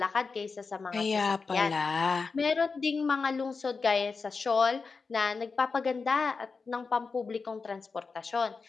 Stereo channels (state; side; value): quieter; right; 4.6 dB